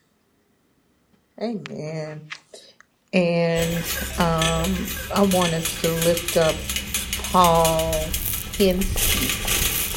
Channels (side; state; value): both; identical; correlation 1.00